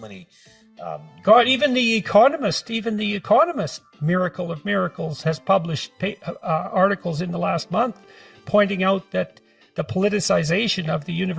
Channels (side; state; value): both; identical; correlation 1.00